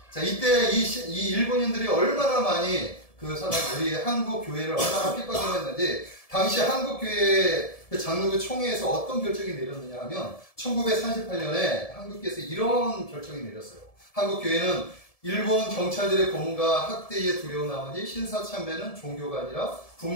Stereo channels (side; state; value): right; late; 1.7 ms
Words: 자, 이때 이 일본인들이 얼마나 많이 우리 한국 교회를 얼마나 핍박을 했는지, 당시 한국 교회 그 장로교 총회에서 어떤 결정이 내렸느냐 하면 1938년에 한국교회에서 이런 결정이 내렸어요. 한국 교회는 일본 경찰들의 고문과 학대에 두려운 나머지 신사참배는 종교가 아니라